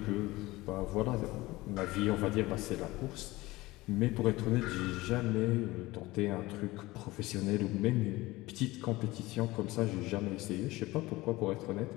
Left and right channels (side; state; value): right; quieter; 19.7 dB